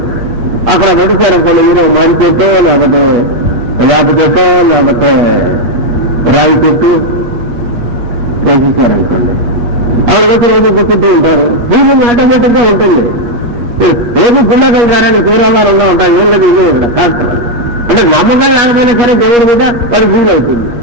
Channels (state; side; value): late; left; 8.3 ms